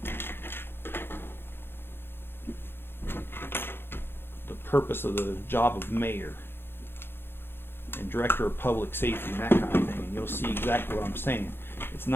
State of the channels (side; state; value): right; late; 0.11 ms